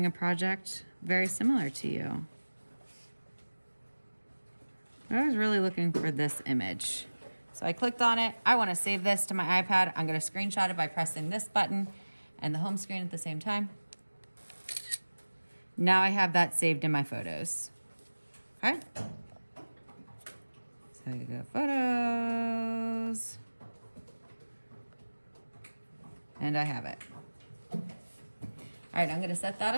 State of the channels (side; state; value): both; inverted; correlation -1.00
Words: a project very similar to you. I was really looking for this image. So I clicked on it. I want to save this to my iPad. I'm going to screenshot it by pressing this button and the home screen at the same time. Now I have that saved in my photos. Okay. So you go photos. And I have it. All right, I'm going to set that